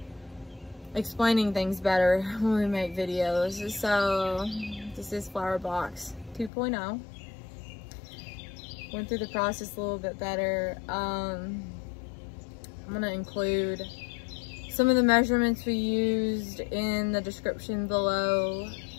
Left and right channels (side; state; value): right; drops out; at 6.5 s